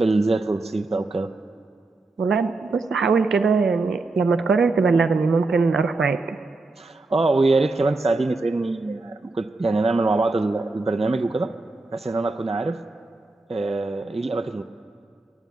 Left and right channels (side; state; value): left; quieter; 3.4 dB